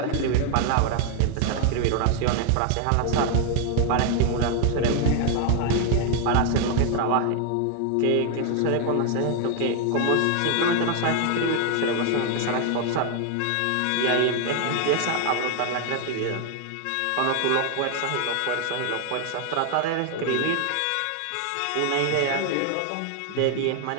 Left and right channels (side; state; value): both; different; correlation 0.00